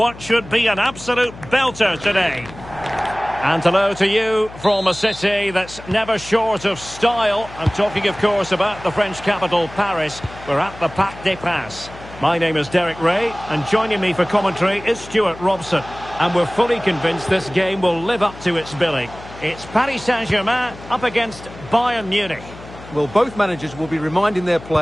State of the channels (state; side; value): noise; left; hum, 17 dB below the sound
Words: should be an absolute belter today. And hello to you from a city that's never short of style. I'm talking, of course, about the French capital, Paris. We're at the Parc des Princes. My name is Derek Ray, and joining me for commentary is Stuart Robson. And we're fully convinced this game will live up to its billing. It's Paris Saint-Germain up against Bayern Munich. Well, both managers will be reminding their